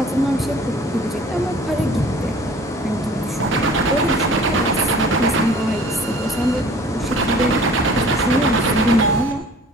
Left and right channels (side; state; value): both; normal; correlation 0.49